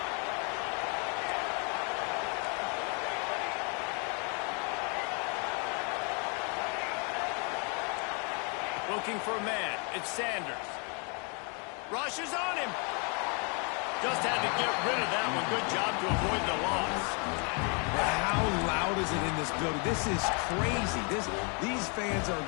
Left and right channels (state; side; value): quieter; right; 36.1 dB